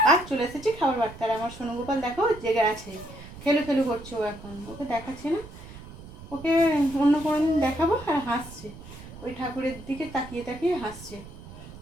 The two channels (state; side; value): noise; right; rumble, 16 dB below the sound